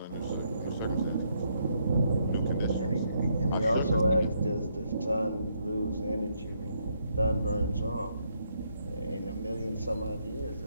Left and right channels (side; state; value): both; inverted; correlation -0.75